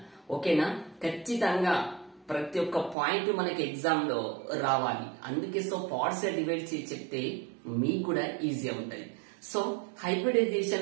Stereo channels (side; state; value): left; drops out; at 3.0 s